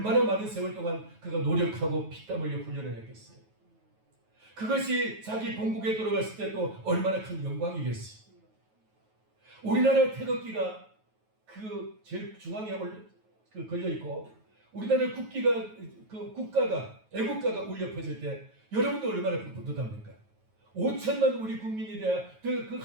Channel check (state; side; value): late; left; 9.3 ms